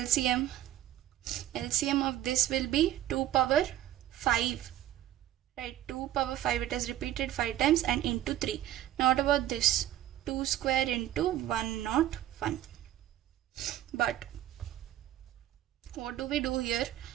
LCM of this will be 2 power 5, right? 2 power 5, it has repeated 5 times, and into 3. Now what about this? 2 square into 101. But what do we do here?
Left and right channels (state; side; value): quieter; left; 12.9 dB